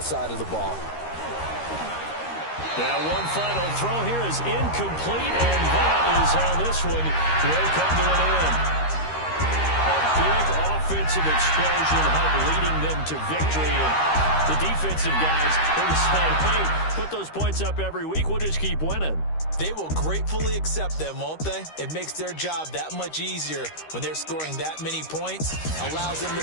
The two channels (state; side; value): late; right; 13 ms